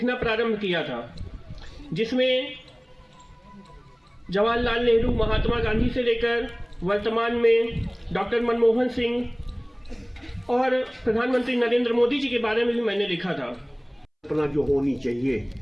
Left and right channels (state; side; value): identical; both; correlation 1.00